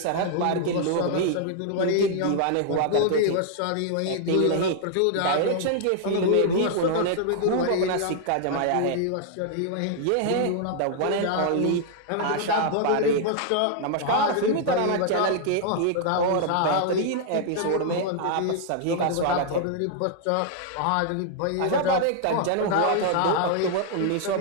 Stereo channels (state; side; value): different; both; correlation -0.01